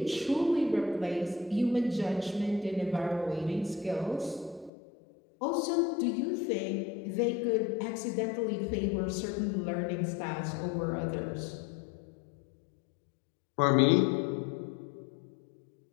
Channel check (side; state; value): right; drops out; at 4.7 s